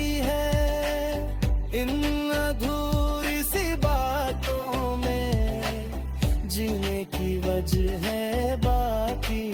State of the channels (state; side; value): identical; both; correlation 1.00